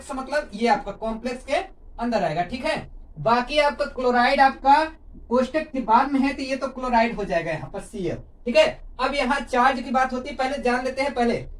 मतलब ये आपका कॉम्प्लेक्स के अंदर आएगा, ठीक है। बाकी आपका क्लोराइड आपका कोष्टक के बाद में है, तो ये तो क्लोराइड हो जाएगा यहाँ पर Cl, ठीक है। अब यहाँ चार्ज की बात होती है, पहले जान लेते हैं। पहले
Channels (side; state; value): both; identical; correlation 1.00